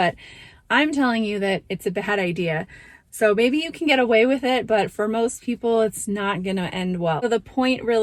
I'm telling you that it's a bad idea. So maybe you can get away with it, but for most people, it's not going to end well. So the point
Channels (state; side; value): identical; both; correlation 1.00